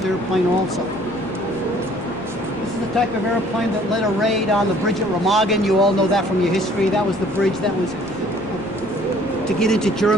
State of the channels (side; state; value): both; normal; correlation 0.56